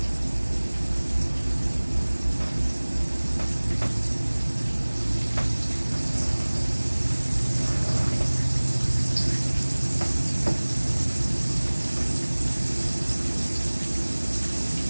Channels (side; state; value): both; inverted; correlation -1.00